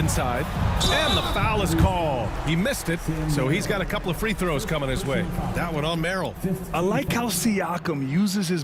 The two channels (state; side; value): identical; both; correlation 1.00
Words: And the foul is called. He missed it, so he's got a couple of free throws coming his way. That one on Merrill. I like how Siakam uses his